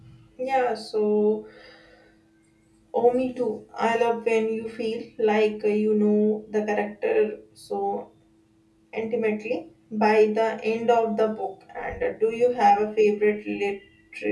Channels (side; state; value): both; identical; correlation 1.00